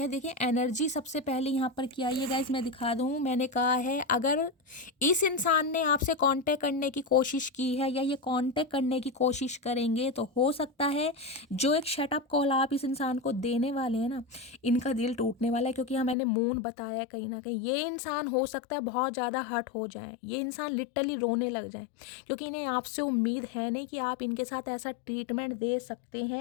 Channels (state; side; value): drops out; right; at 16.2 s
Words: देखिए एनर्जी सबसे पहले यहाँ पर क्या है गाइस, मैं दिखा दूँ। मैंने कहा है अगर इस इंसान ने आपसे कांटेक्ट करने की कोशिश की है या ये कांटेक्ट करने की कोशिश करेंगे तो हो सकता है जो एक शटअप कॉल आप इस इंसान को देने वाले हैं ना, इनका दिल टूटने वाला है। क्योंकि यहाँ मैंने मून बताया कहीं ना कहीं ये इंसान हो सकता है बहुत ज़्यादा हर्ट हो जाए, ये इंसान लिटरली रोने लग जाए, क्योंकि इन्हें आपसे उम्मीद है नहीं कि आप इनके साथ ऐसा ट्रीटमेंट दे सकते